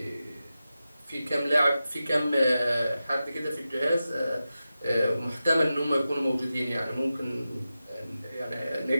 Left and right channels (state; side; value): inverted; both; correlation -0.93